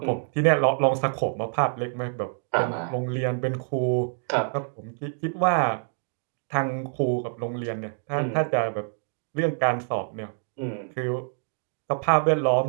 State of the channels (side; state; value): left; silent; 61 dB below the other